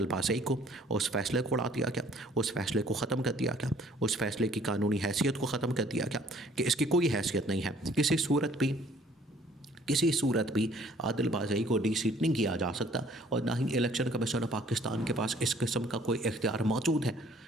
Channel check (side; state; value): both; normal; correlation 0.58